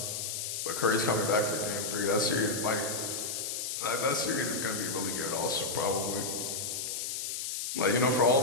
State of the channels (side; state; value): left; noise; hiss, 3 dB below the sound